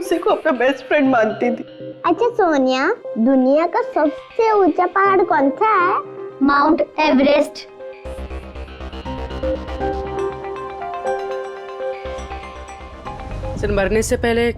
को अपना बेस्ट फ्रेंड मानती थी। अच्छा सोनिया, दुनिया का सबसे ऊंचा पहाड़ कौन सा है? Mount Everest. सर, मरने से पहले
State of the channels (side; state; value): both; identical; correlation 1.00